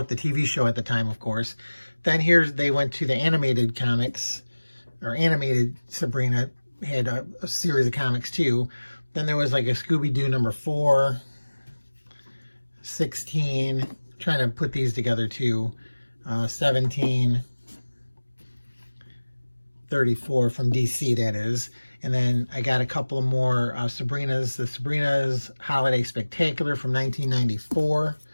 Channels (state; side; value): inverted; both; correlation -1.00